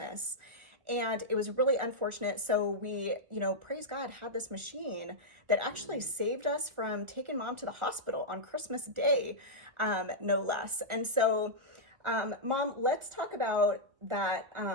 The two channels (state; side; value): late; left; 1.6 ms